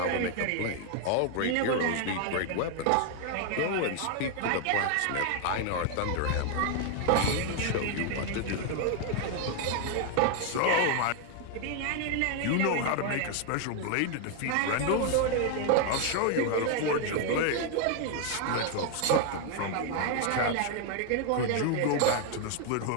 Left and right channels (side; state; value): both; different; correlation 0.01